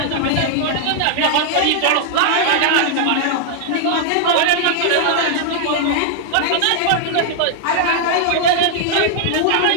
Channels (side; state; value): both; different; correlation -0.01